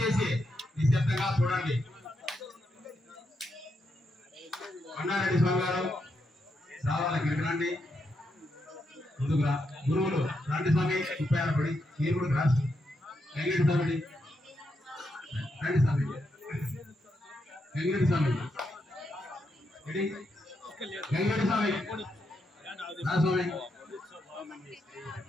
నిశ్శబ్దంగా చూడండి. అన్నారెడ్డి స్వామి గారు రావాలి, ఇక్కడికి రండి, ముందుగా గురువులు రండి స్వామి, 36 పడి మీరు కూడా రాసి వెంకట స్వామి రండి స్వామి, వెంకట స్వామి వెంకట స్వామి రా స్వామి.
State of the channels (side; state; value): both; normal; correlation 0.82